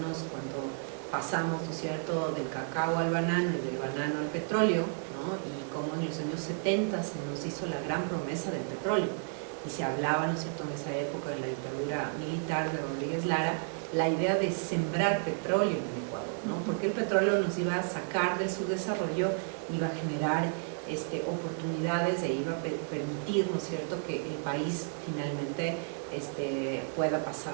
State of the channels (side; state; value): left; silent; 56 dB below the other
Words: cuando pasamos, ¿no es cierto?, del cacao al banano y del banano al petróleo, ¿no? Y cómo en los años 70 se nos hizo la gran promesa del petróleo. Y se hablaba, ¿no es cierto?, en esa época, en la dictadura militar de Rodríguez Lara, la idea de sembrar petróleo en el Ecuador, ¿no? Porque el petróleo nos iba a sacar del subdesarrollo, iba a generar oportunidades e iba a permitir, ¿no es cierto?, que el país finalmente pueda